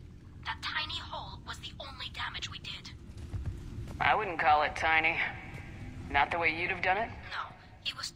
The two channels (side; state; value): both; identical; correlation 1.00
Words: That tiny hole was the only damage we did. I wouldn't call it tiny. Not the way you'd have done it? No, it was